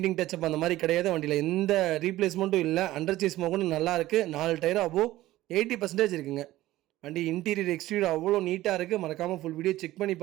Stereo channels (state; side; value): quieter; left; 16.0 dB